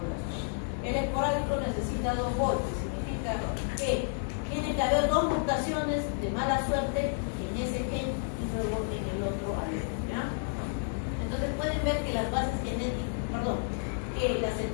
El esporádico necesita dos golpes, significa que tiene que haber dos mutaciones de mala suerte en ese gen y luego en el otro alelo, ¿ya? Entonces pueden ver que las bases genéticas, que las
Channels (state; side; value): silent; right; digital silence